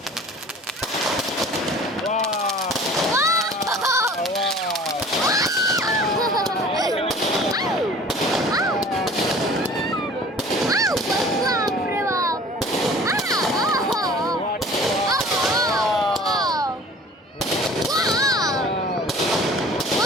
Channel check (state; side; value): normal; both; correlation 0.46